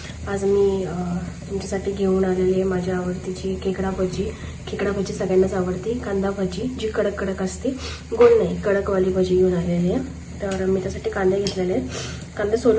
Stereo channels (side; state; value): both; identical; correlation 1.00